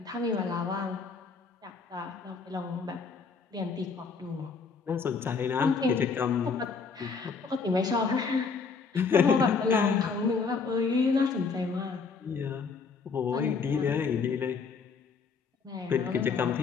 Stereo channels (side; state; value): right; quieter; 5.1 dB